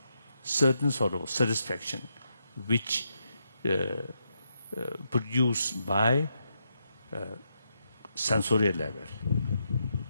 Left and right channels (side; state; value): both; inverted; correlation -0.82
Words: certain sort of satisfaction, which produced by sensorial level.